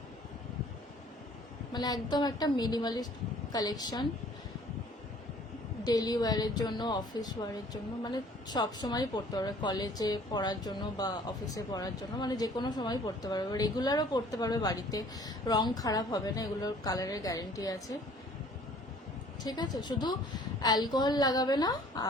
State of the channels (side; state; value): both; normal; correlation 0.54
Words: মানে একদম একটা মিনিমালিস্ট কালেকশন, ডেলি ওয়্যারের জন্য, অফিস ওয়্যারের জন্য, মানে সব সময় পরতে পারবে, কলেজে পড়ার জন্য বা অফিসে পড়ার জন্য, মানে যে কোনো সময় পরতে পারবে, রেগুলারও পরতে পারবে বাড়িতে, রং খারাপ হবে না, এগুলোর কালারের গ্যারেন্টি আছে। ঠিক আছে, শুধু অ্যালকোহল লাগাবে না